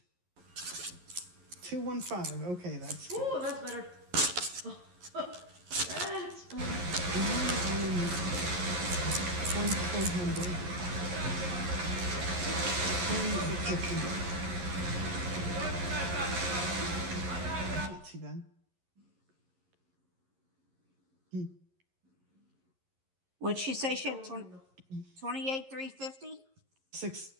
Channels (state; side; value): late; left; 11 ms